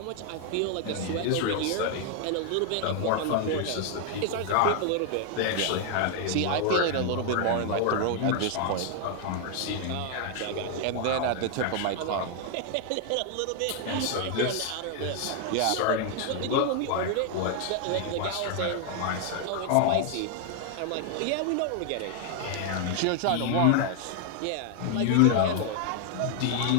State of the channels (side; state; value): both; different; correlation 0.00